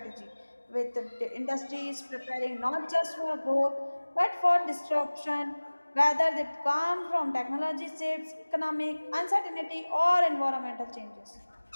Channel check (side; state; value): both; inverted; correlation -1.00